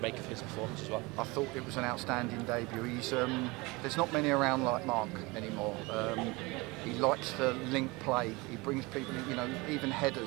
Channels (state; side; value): quieter; left; 24.5 dB